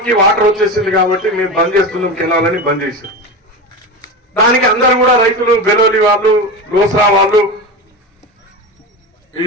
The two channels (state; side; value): normal; both; correlation 0.24